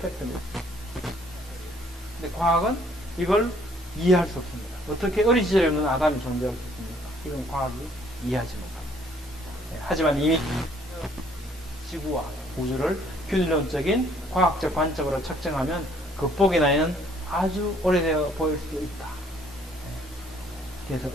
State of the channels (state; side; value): normal; both; correlation 0.62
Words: 팩트입니다. 근데 과학은 이걸 이해할 수 없습니다. 어떻게 어린 시절에 없는 아담이 존재할 수 있습니까? 이건 과학이 이해하지 못합니다. 하지만 이미 지구와 우주를 균일론적인 과학적 관점으로 측정하면 극복의 나이는 아주 오래되어 보일 수도 있다. 그래서